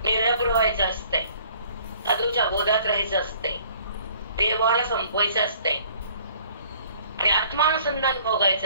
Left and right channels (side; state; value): both; inverted; correlation -0.56